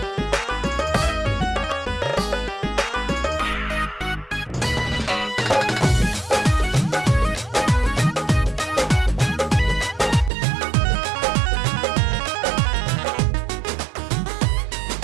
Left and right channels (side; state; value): left; drops out; at 10.3 s